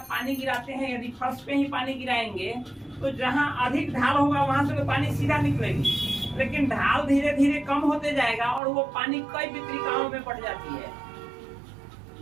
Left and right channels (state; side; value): drops out; left; at 8.6 s